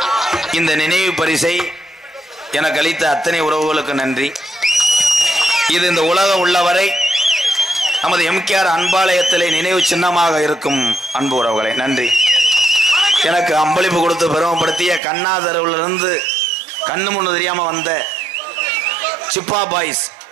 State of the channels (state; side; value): drops out; left; at 15.0 s